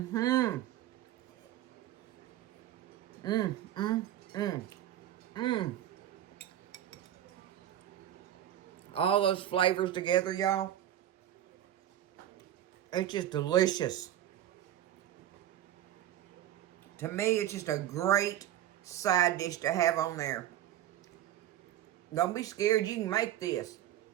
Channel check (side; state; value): left; quieter; 12.0 dB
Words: Mmm. Mmm. Mmm. Mmm. All those flavors together, y'all. It's just delicious. To me, it's just a great side dish to have on there. Don't be scared. You can make this.